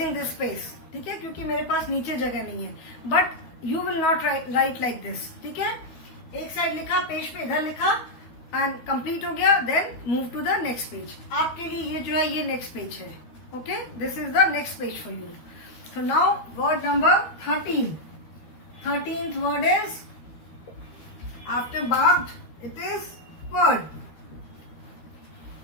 this space. ठीक है, क्योंकि मेरे पास नीचे जगह नहीं है. But you will not write like this. ठीक है, एक साइड लिखा, पेज पे इधर लिखा एंड कंप्लीट हो गया, then move to the next page. आपके लिए ये जो है ये नेक्स्ट पेज है. Okay, this is the next page for you. So now word number 13. 13th word is after barked, it is word.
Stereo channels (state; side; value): late; right; 12 ms